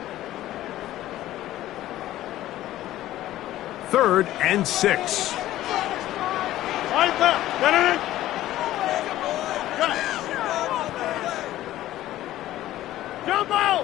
Third and 6. Jump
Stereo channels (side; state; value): right; quieter; 14.4 dB